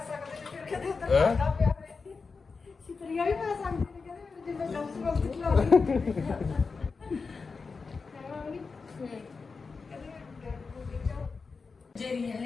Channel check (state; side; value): quieter; right; 4.6 dB